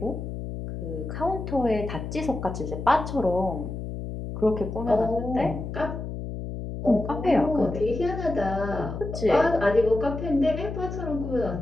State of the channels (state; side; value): noise; left; hum, 7 dB below the sound